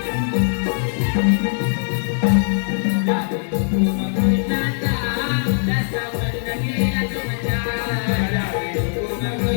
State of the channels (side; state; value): right; silent; digital silence